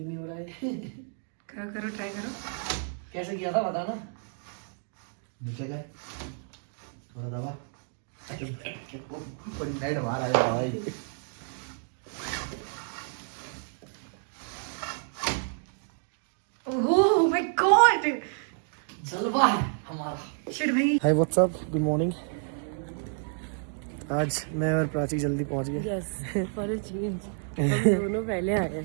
नहीं हो रहा है। करो ट्राई करो। कैसे किया था बताना। नीचे गए थोड़ा दबा नाइट बाहर आया भाई। ओह माय गॉड, जलवा है हमारा। शिट भाई। Hi what's up, good morning. आज मैं और प्राची जल्दी पहुंच गए। यस, फॉर अ चेंज हम दोनों पहले आए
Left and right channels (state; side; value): silent; left; 58 dB below the other